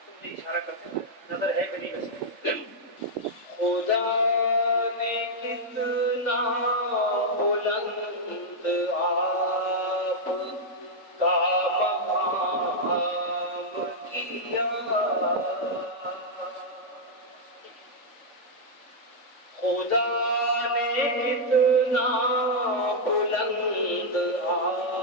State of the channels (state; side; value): late; right; 3.5 ms